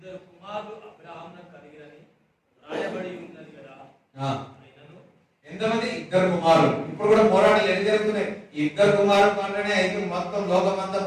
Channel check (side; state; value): both; identical; correlation 1.00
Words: కుమారులు అబ్రాహామునకు కలిగిరని రాయబడి ఉన్నది కదా. అయినను ఎంతమంది? ఇద్దరు కుమారులు. ఇప్పుడు కూడా పోరాటాలు ఎన్ని జరుగుతున్నాయి? ఇద్దరు కుమారులు అంటేనే అయితే మొత్తం లోకమంతా